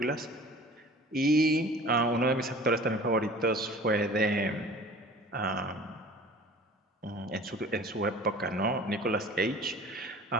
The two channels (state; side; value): normal; both; correlation 0.44